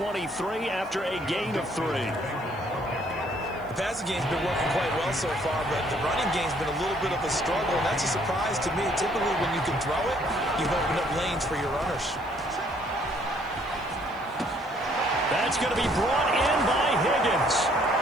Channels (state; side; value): noise; left; hiss, 29 dB below the sound